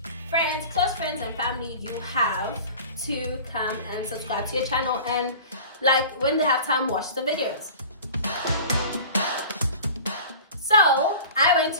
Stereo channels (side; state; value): both; inverted; correlation -0.40